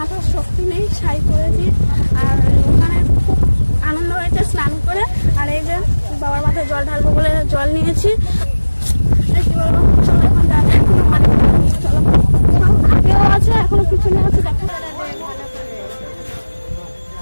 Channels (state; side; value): inverted; both; correlation -1.00